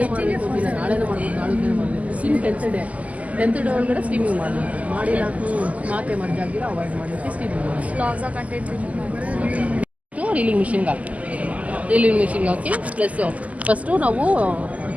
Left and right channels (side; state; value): left; late; 0.072 ms